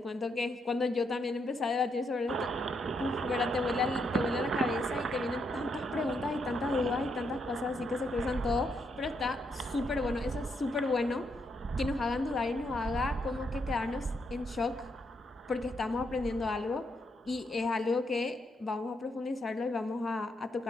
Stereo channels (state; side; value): normal; both; correlation 0.78